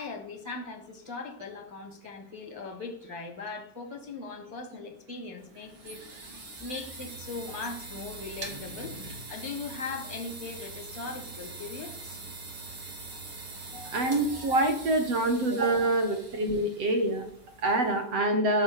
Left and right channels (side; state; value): left; late; 8.0 ms